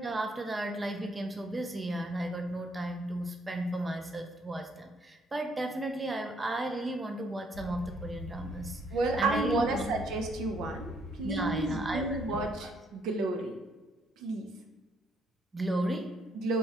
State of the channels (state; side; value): normal; both; correlation 0.69